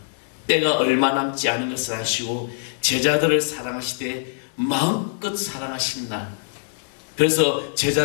때가 얼마 남지 않은 것을 아시고 제자들을 사랑하시되 마음껏 사랑하신 날. 그래서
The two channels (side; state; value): right; silent; digital silence